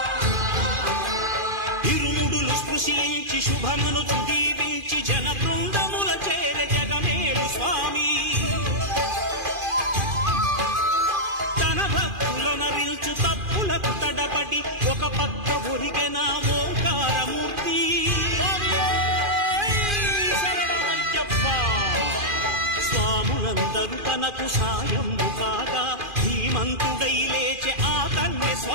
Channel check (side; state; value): left; late; 2.4 ms